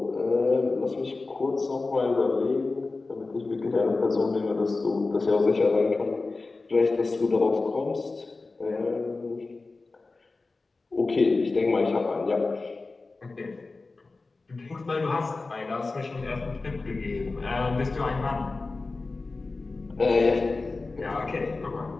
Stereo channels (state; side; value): quieter; right; 3.6 dB